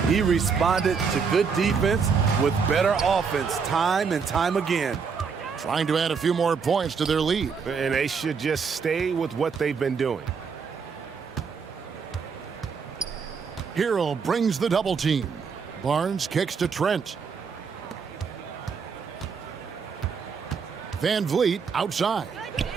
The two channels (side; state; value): left; quieter; 5.8 dB